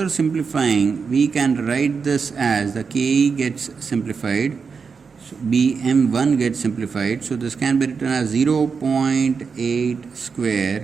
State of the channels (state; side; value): quieter; left; 5.5 dB